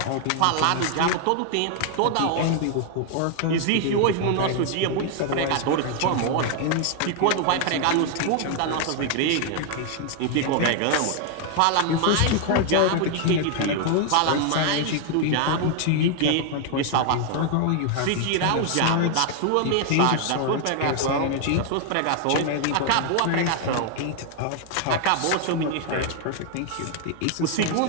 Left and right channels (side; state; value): both; different; correlation 0.00